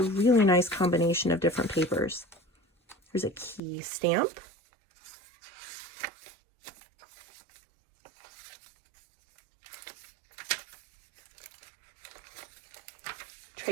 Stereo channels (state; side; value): drops out; left; at 3.6 s